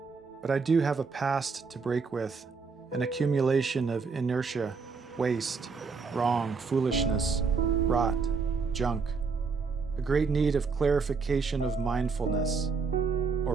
But I do have a past to break with, an accumulation of inertia, waste, wrong, foolishness, rot, junk, a great need of clarification of mindfulness, or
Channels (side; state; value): left; quieter; 4.9 dB